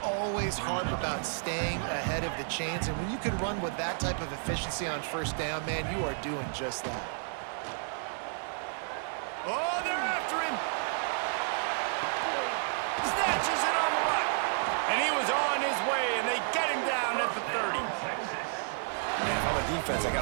always harp about staying ahead of the chains, and when you can run with that type of efficiency on first down, man, you are doing just that. Oh, they're after him. Snatches it on the right. And he was on his way, and they get him down at the 30. Man, if I'm a defense, I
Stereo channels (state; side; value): silent; left; digital silence